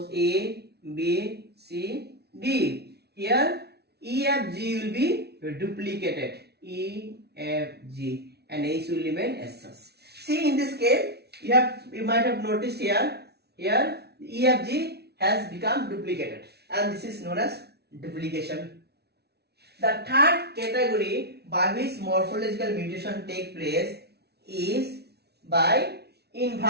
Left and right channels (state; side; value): late; left; 0.48 ms